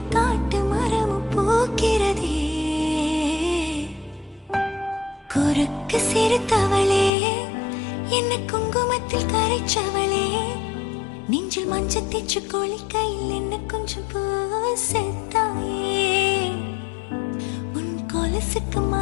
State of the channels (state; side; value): drops out; right; at 7.1 s